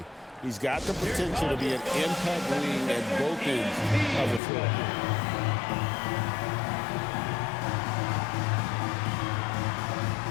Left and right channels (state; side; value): drops out; right; at 4.4 s